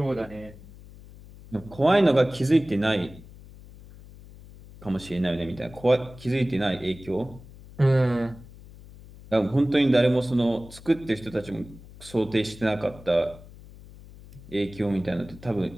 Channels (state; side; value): noise; left; hum, 19 dB below the sound